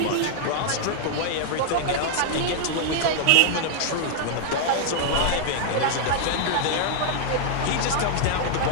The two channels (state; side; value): different; both; correlation 0.00